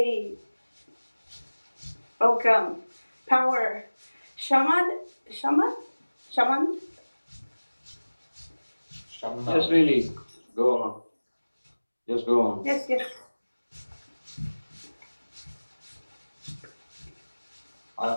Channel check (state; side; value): inverted; both; correlation -1.00